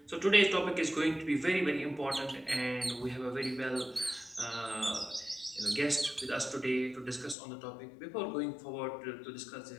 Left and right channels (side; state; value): right; drops out; at 7.4 s